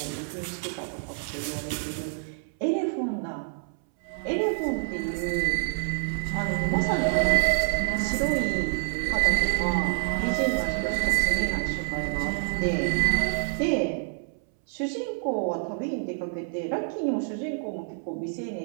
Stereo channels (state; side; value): silent; left; 60 dB below the other